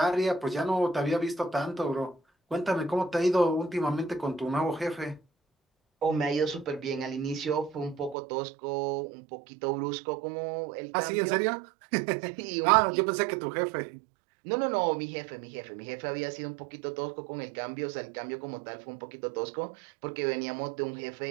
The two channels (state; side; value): drops out; left; at 8.2 s